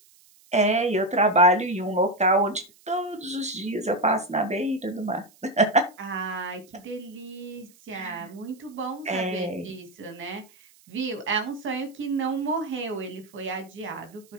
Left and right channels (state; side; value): noise; right; hiss, 28 dB below the sound